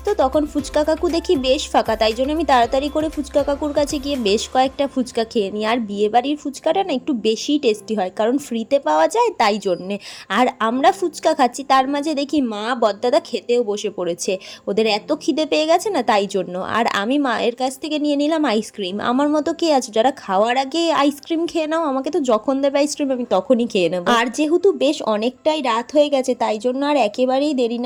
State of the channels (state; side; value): identical; both; correlation 1.00